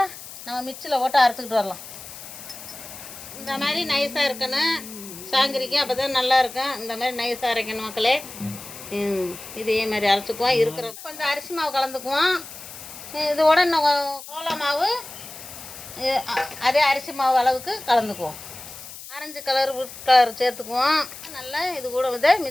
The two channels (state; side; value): noise; left; hiss, 14 dB below the sound